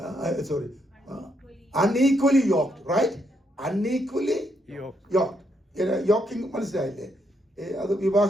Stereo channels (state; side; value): normal; both; correlation 0.76